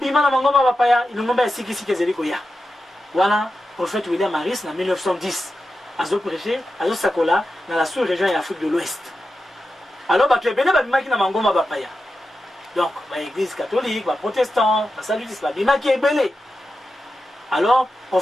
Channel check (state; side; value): normal; both; correlation 0.91